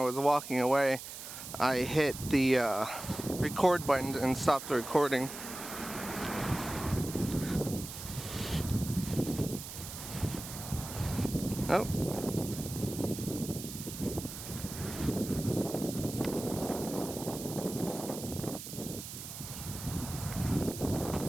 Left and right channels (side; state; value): right; noise; hiss, 10 dB below the sound